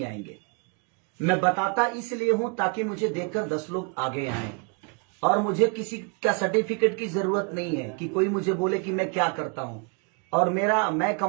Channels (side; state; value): left; quieter; 34.1 dB